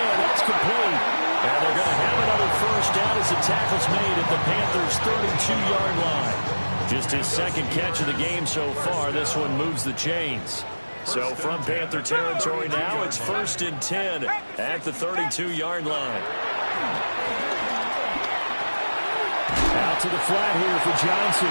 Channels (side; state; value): both; inverted; correlation -1.00